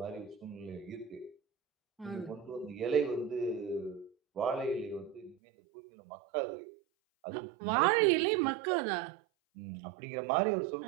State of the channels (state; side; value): drops out; left; at 5.4 s